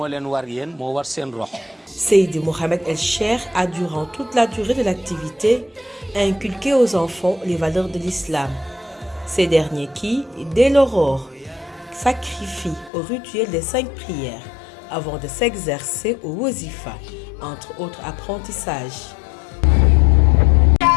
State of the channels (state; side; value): drops out; right; at 12.9 s